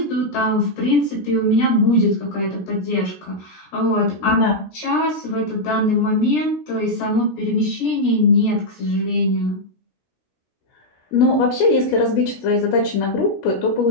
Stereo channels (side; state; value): right; late; 16 ms